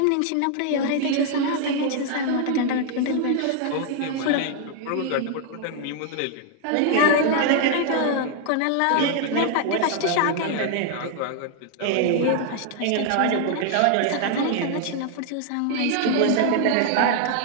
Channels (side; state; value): both; different; correlation 0.00